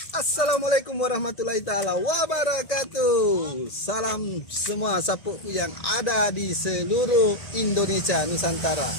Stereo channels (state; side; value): late; right; 1.9 ms